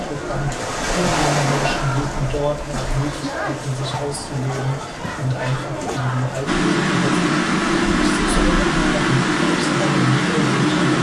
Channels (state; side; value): identical; both; correlation 1.00